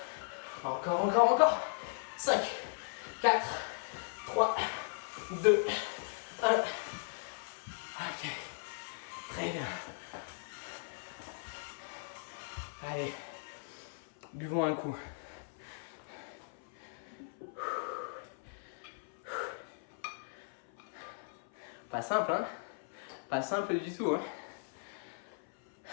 Encore. 5, 4, 3, 2, 1. Ok. Très bien. Allez. Buvons un coup. Pas simple, hein? Pas simple du tout, hein?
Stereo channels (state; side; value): silent; right; 53 dB below the other